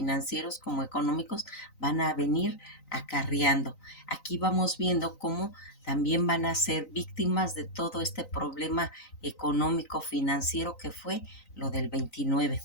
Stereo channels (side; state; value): right; late; 3.9 ms